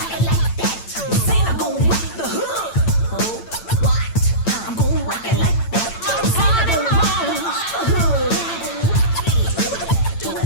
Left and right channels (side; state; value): right; late; 8.9 ms